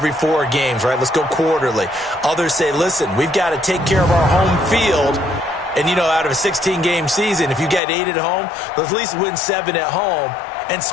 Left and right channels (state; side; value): drops out; right; at 7.8 s